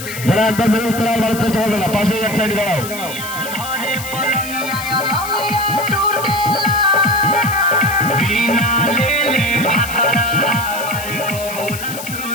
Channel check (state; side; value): noise; left; hiss, 10 dB below the sound